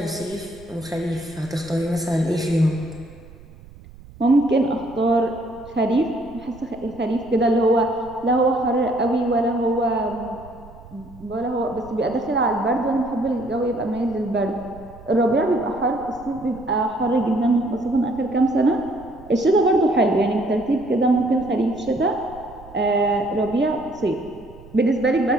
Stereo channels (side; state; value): right; noise; rumble, 21 dB below the sound